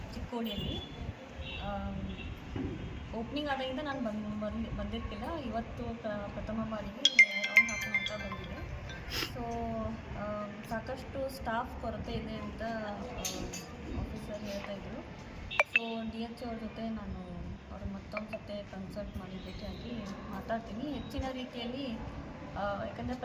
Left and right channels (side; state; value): both; identical; correlation 1.00